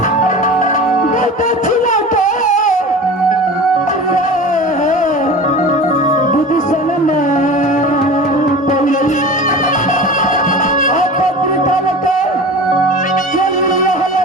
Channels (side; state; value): both; normal; correlation 0.34